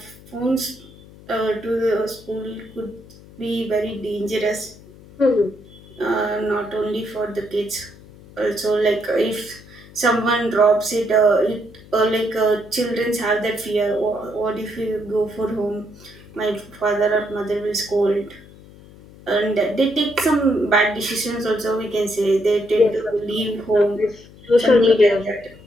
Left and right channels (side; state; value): left; noise; hum, 21 dB below the sound